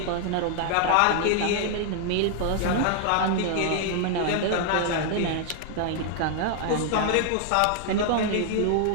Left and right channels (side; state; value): both; different; correlation 0.00